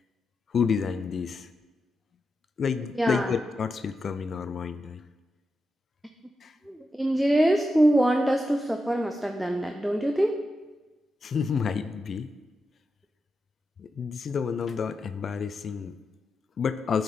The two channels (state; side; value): normal; both; correlation 0.88